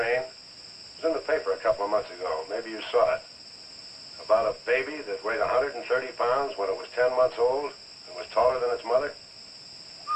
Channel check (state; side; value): identical; both; correlation 1.00